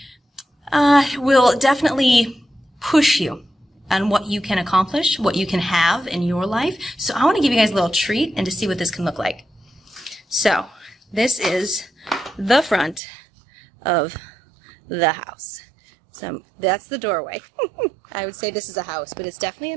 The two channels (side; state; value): left; drops out; at 13.0 s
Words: will definitely push you on what you can accomplish, what you can have in your life. So I want to give you guys a little treat and to see what this can look like. So this is the front of the house. So that's the doorway. I would say this is a house, but it's definitely a